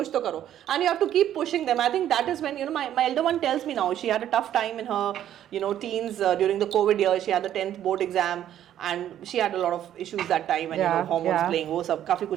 तो करो. And you have to keep pushing them. I think that is when my elder one tells me now, she had a tough time in her teens during the COVID year. She had the 10th board exam and she had a lot of issues that time, and hormones playing, वो सब काफी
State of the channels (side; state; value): left; quieter; 11.2 dB